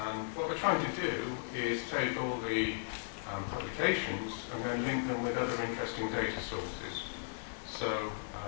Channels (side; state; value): right; silent; digital silence